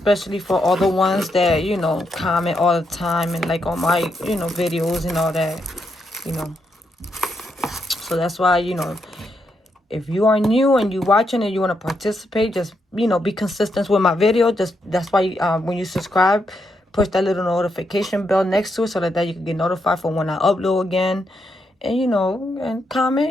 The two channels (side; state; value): both; normal; correlation 0.80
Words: for all the ones that, you know, comment all the time and like on my, you know, videos and all that, you know. So that's why, you know, if you are new and you watching and you want to participate, just, you know, be consistent with my video. That's why when you subscribe, push that little notification bell next to it so that you can get notified for when I upload again. And, you know, and comment,